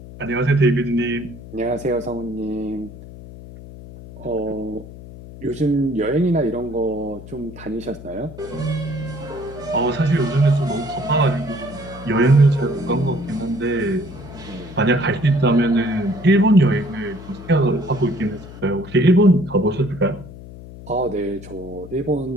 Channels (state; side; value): noise; left; hum, 15 dB below the sound